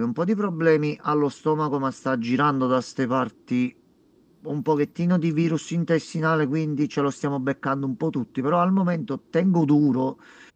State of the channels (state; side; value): identical; both; correlation 1.00